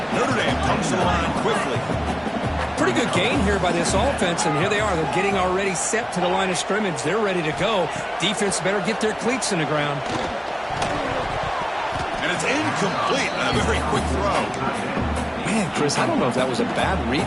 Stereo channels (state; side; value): identical; both; correlation 1.00